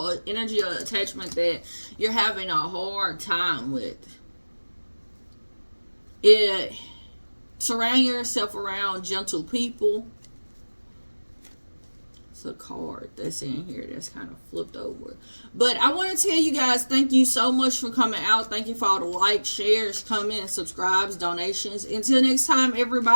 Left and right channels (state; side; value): inverted; both; correlation -1.00